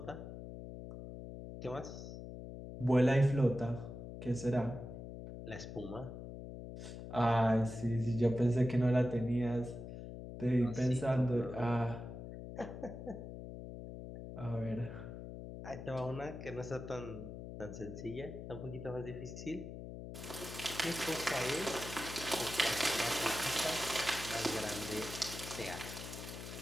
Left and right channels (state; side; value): noise; left; hum, 10 dB below the sound